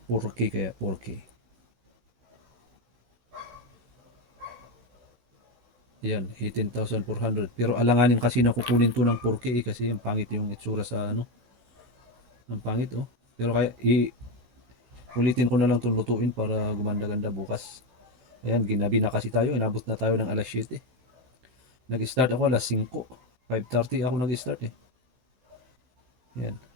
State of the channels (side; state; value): left; late; 16 ms